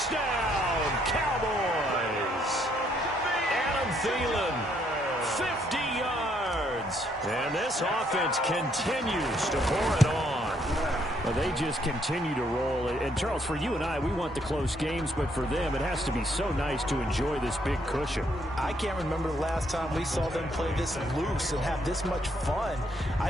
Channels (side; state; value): both; normal; correlation 0.71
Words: Cowboys! Thielen, 50 yards. And this offense continues to pour it on. Well, they just continue to roll. And, Charles, for you and I, we want the close games, but for them, it has to be so nice to enjoy this big cushion. I can't remember the last time we saw them play this loose and have this much fun. I